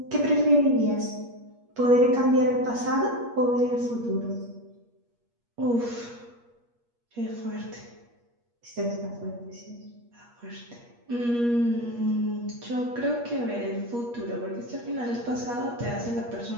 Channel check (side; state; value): left; late; 8.4 ms